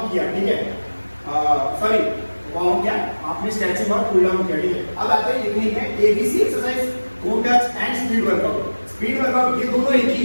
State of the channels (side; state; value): both; inverted; correlation -1.00